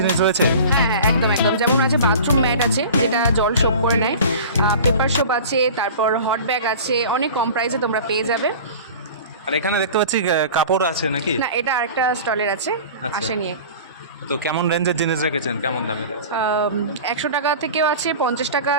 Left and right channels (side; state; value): both; inverted; correlation -0.38